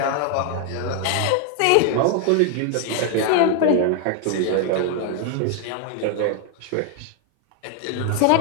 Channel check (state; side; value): different; both; correlation 0.00